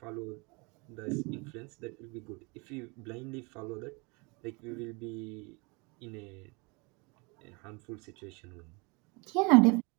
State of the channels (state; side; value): quieter; left; 29.0 dB